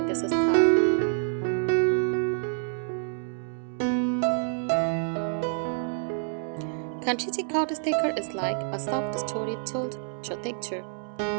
this style. Country cottage decor is like a soft story told through texture,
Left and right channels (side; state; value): left; silent; 60 dB below the other